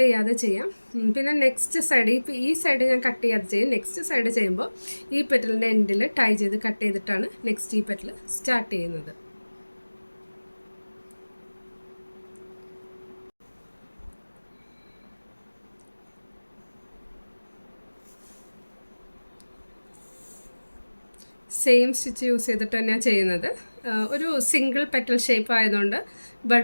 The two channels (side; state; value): both; inverted; correlation -1.00